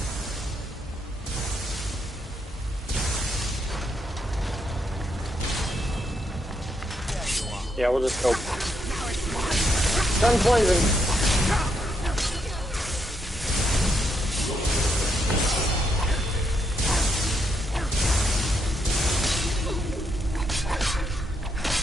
Yeah, we'll just go. Guns blazing.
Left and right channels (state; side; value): normal; both; correlation 0.78